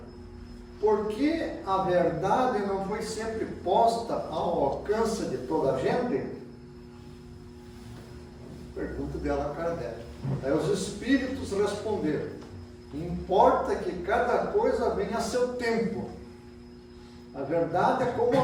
por que a verdade não foi sempre posta ao alcance de toda a gente? Pergunta dela a Kardec. Aí os espíritos responderam: importa que cada coisa venha a seu tempo. A verdade é como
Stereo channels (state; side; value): identical; both; correlation 1.00